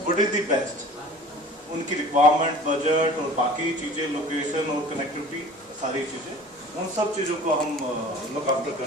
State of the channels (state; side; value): normal; both; correlation 0.43